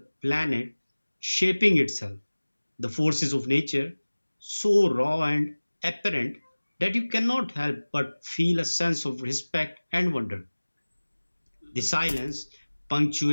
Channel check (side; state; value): both; inverted; correlation -1.00